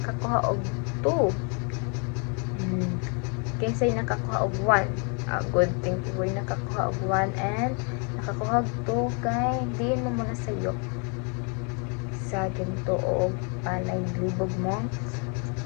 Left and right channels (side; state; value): right; quieter; 36.9 dB